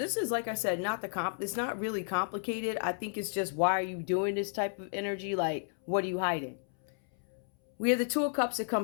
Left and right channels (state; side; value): silent; right; 56 dB below the other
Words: is, like I said, it's not really complicated. I think it's just, why are you doing this type of energy? Like, what are you hiding? We have the Two of Cups that